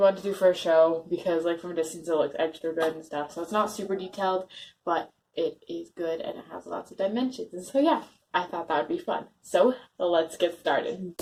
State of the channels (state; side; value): identical; both; correlation 1.00